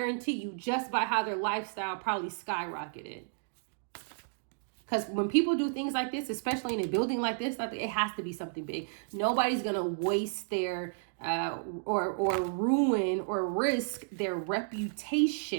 you, just by how their lifestyle probably skyrocketed. Because when people do things like this, especially in a building like this, it has to be something big. Nobody's going to waste their or ruin or risk their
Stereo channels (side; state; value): left; silent; digital silence